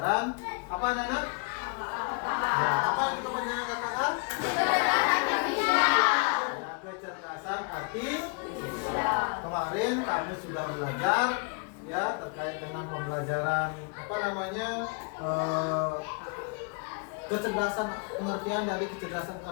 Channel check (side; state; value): right; quieter; 33.2 dB